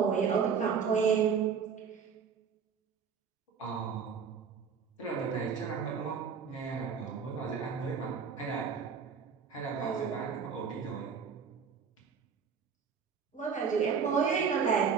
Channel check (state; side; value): quieter; left; 6.3 dB